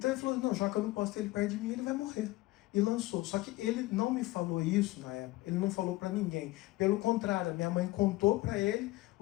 ele falou, não, já que eu não posso ter ele perto de mim, ele vai morrer. E lançou. Só que ele não me falou isso na época, ele não falou para ninguém. Pelo contrário, a minha mãe contou para ele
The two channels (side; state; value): right; quieter; 19.4 dB